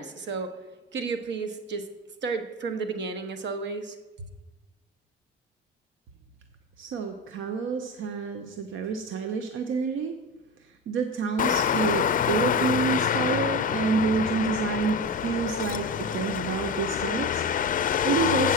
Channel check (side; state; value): both; normal; correlation 0.21